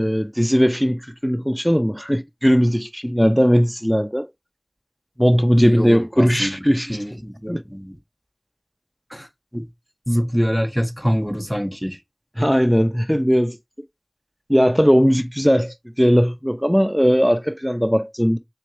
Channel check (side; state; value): both; identical; correlation 1.00